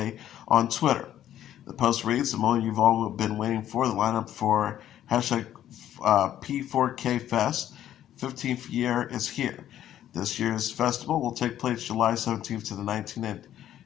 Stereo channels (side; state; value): right; quieter; 11.7 dB